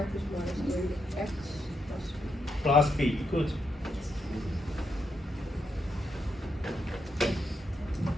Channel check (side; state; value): both; normal; correlation 0.81